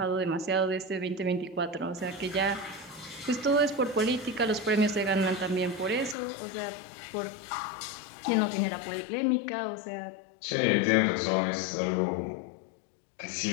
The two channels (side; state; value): right; drops out; at 6.2 s